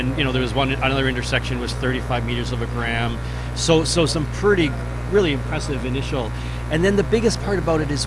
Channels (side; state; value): both; identical; correlation 1.00